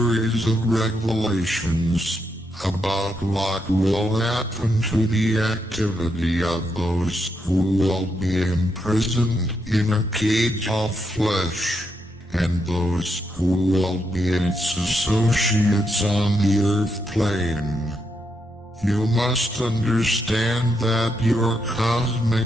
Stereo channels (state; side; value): normal; both; correlation 0.81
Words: of revelations about what will happen to the activity of those who will be imprisoned in a cage of flesh, and those who will be its associates on the earth plane. You must understand that your cosmic